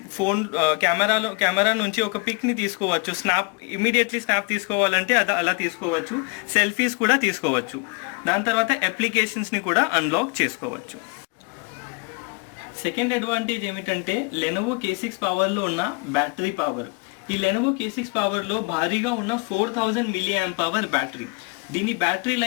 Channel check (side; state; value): right; quieter; 32.2 dB